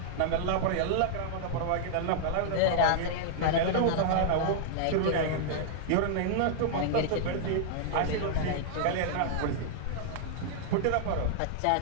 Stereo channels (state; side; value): different; both; correlation -0.01